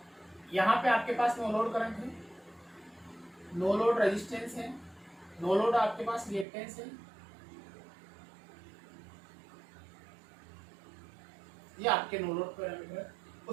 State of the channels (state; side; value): drops out; left; at 6.5 s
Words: यहाँ पे आपके पास नो लोड करंट है, नो लोड रेजिस्टेंस है, नो लोड आपके पास रिएक्टेंस है, ये आपके नो लोड पैरामीटर है।